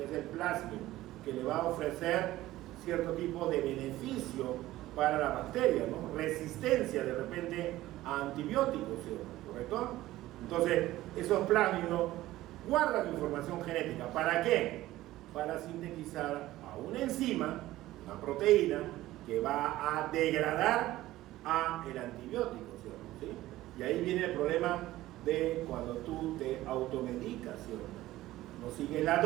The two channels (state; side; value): quieter; left; 16.0 dB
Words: es el plásmido, que le va a ofrecer cierto tipo de beneficio para la bacteria, ¿no? Resistencia de repente a antibióticos, ¿sí? ¿Correcto? Entonces, esos plásmidos guardan información genética. ¿Para qué? Para sintetizar a una enzima, una proteína, que va a degradar a el antibiótico, ¿sí? Y ahí viene el problema de cuando tú te automedicas, ¿sí? No sigues la